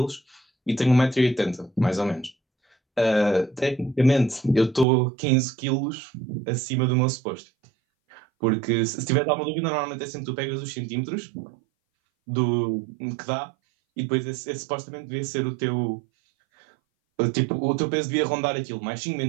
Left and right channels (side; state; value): left; drops out; at 4.9 s